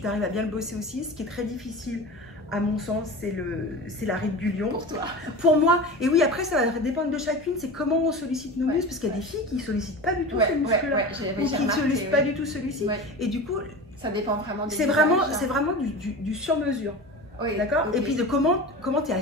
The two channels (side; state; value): both; normal; correlation 0.31